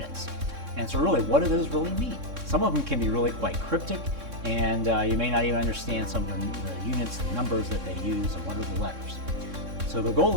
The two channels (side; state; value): left; late; 3.6 ms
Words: And so really, what do those really mean? Some of them can be really quite cryptic, and you may not even understand some of the units and numbers that they use and what are the letters. So the goal